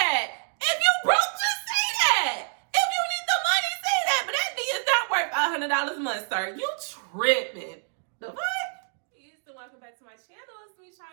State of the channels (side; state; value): left; silent; digital silence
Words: If you broke, just say that. If you need the money, say that. But that thing is not worth $500 a month, sir. You tripping. The fuck? Welcome back to my channel. It's me,